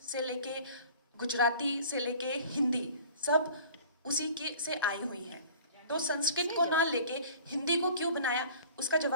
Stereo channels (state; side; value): inverted; both; correlation -0.45